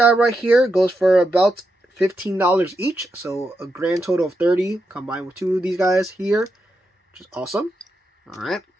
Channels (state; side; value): normal; both; correlation 0.85